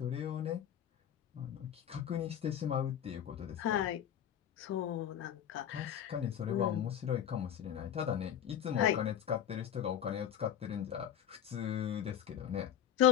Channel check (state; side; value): quieter; right; 9.9 dB